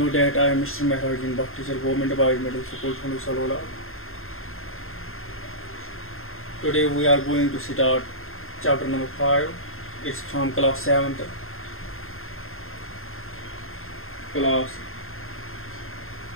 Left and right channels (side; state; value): right; late; 0.61 ms